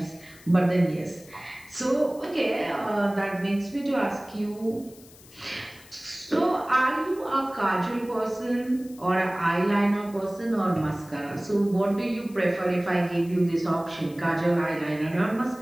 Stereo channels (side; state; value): left; noise; hiss, 23 dB below the sound